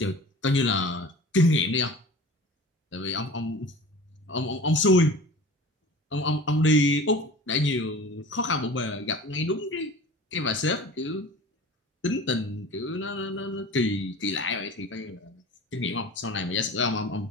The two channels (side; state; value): both; normal; correlation 0.39